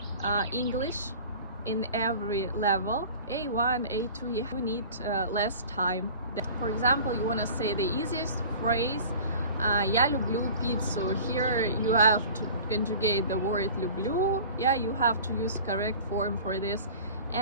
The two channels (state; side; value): inverted; both; correlation -0.41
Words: English in every level, A1, A2, you need less time. For example, you want to say the easiest phrase, я люблю пиццу. Here you have to conjugate the word люблю. Yeah, you have to use correct form for this,